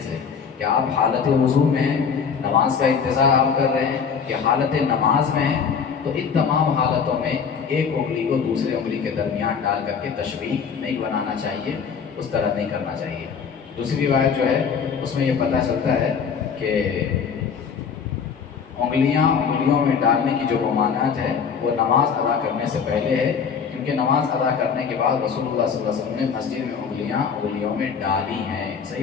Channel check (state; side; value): quieter; right; 6.4 dB